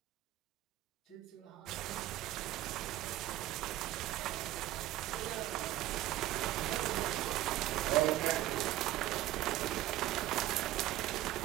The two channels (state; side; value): quieter; left; 15.1 dB